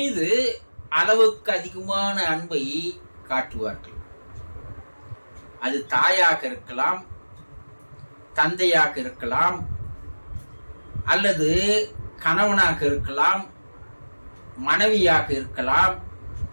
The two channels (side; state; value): both; inverted; correlation -1.00